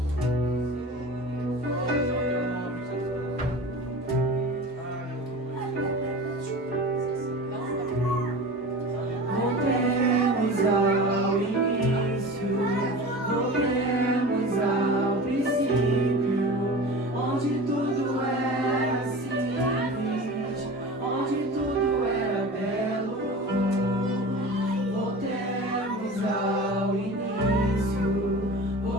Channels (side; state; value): both; normal; correlation 0.34